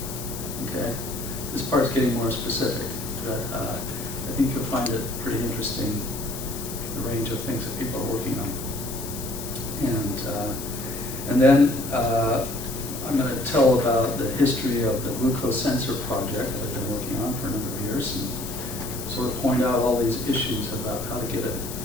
Okay? This part's getting more specific, but I think you'll find it pretty interesting, the range of things that people are working on. And then I'm going to tell about the history of the glucose sensor project that I've been working on for a number of years, and sort of point out all these issues about how to get it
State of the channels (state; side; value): noise; left; hiss, 9 dB below the sound